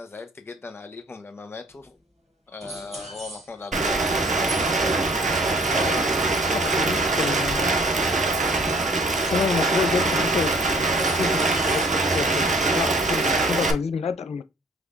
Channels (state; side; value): normal; both; correlation 0.56